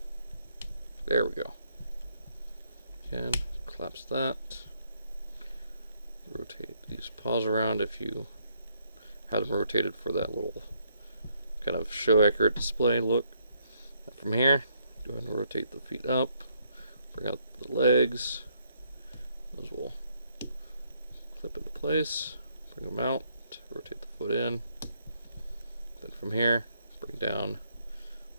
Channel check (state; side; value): inverted; both; correlation -0.72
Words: There we go. Again, collapse that. Rotate these paws around if you had them rotated for that little kind of show accurate display look. And from here, go ahead and rotate the feet up, bring out the legs. Those will clip into place, bring them out, rotate the foot in. Then from here, bring down